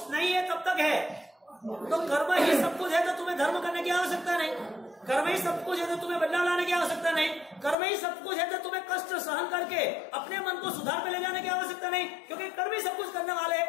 नहीं है तब तक है। तो कर्म ही सब कुछ है तो तुम्हें धर्म करने की आवश्यकता नहीं, कर्म ही सब कुछ है तो तुम्हें बदलाव लाने की आवश्यकता नहीं, कर्म ही सब कुछ है तो तुम्हें कष्ट सहन करके अपने मन को सुधार पे ले जाने की आवश्यकता नहीं, क्योंकि कर्म ही सब कुछ करने वाले।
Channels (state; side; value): drops out; right; at 7.8 s